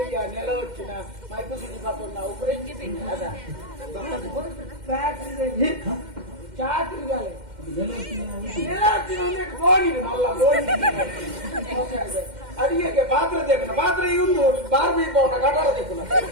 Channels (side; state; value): left; late; 2.1 ms